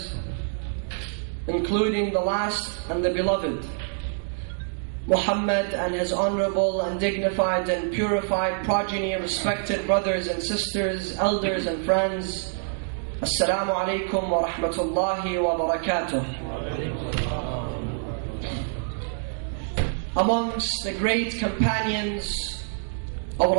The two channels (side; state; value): left; silent; digital silence